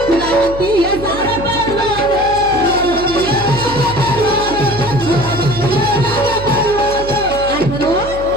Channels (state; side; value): noise; right; hum, 12 dB below the sound